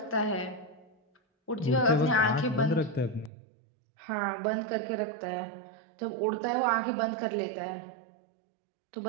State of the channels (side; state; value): left; drops out; at 3.3 s